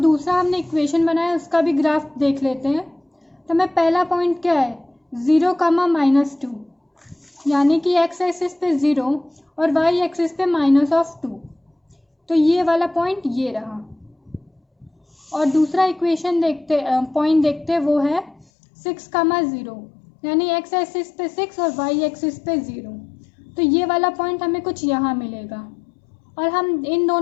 हमने इक्वेशन बनाया उसका भी ग्राफ देख लेते हैं। तो हमें पहला पॉइंट क्या है 0,-2, यानी कि x एक्सिस पे 0 और y एक्सिस पे माइनस ऑफ 2, तो ये वाला पॉइंट ये रहा। और दूसरा इक्वेशन पॉइंट देखते वो है 6,0, यानी x एक्सिस पे 6 और y एक्सिस पे 0, तो ये वाला पॉइंट हमें कुछ यहाँ मिलेगा, और हम इन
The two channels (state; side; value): drops out; right; at 18.4 s